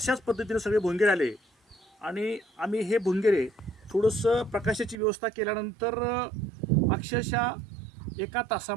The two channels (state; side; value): drops out; left; at 5.0 s